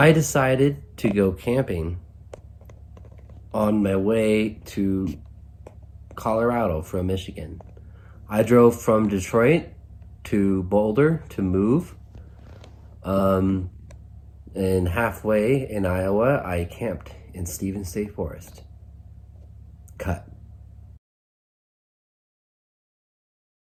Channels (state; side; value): identical; both; correlation 1.00